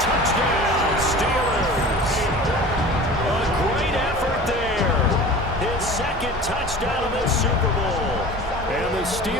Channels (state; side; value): normal; both; correlation 0.39